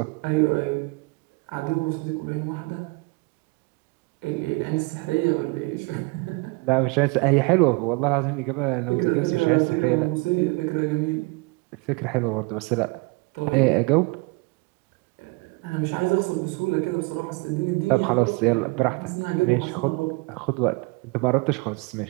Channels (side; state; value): left; quieter; 27.5 dB